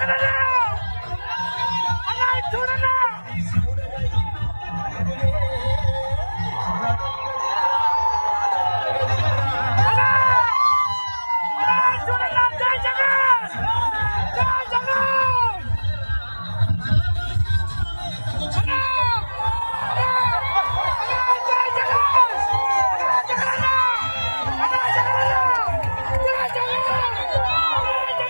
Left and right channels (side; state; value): both; inverted; correlation -1.00